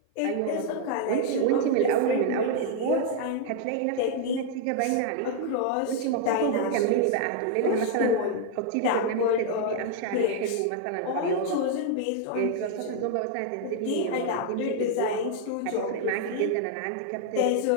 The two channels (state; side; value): different; both; correlation 0.00